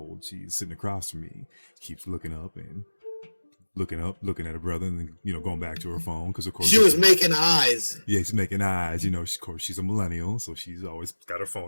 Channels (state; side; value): inverted; both; correlation -1.00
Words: She's sitting across from me, keeps looking at her brother, and then, going back to her phone, because of course she was making eyes. Yeah, she's making eyes. Of course, she's a millennial, so she's always got her